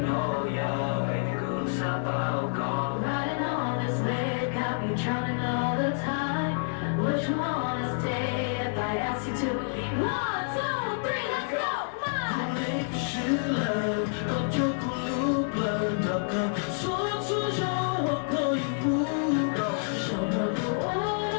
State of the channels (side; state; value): right; silent; digital silence